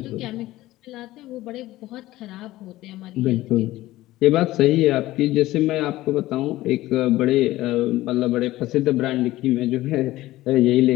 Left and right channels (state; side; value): quieter; right; 16.7 dB